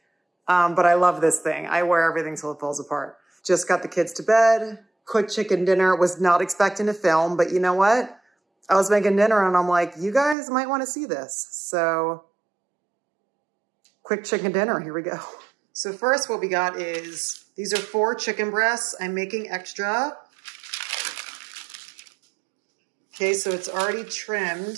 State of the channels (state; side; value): drops out; left; at 10.4 s